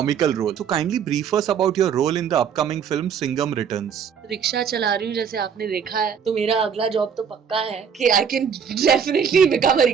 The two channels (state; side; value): quieter; left; 7.3 dB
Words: role. So kindly brief us about your role in the upcoming film Singham Returns. Rickshaw चला रही हूँ जैसे आपने देखा है, तो मेरा अगला जॉब तो पक्का है कि I can definitely become a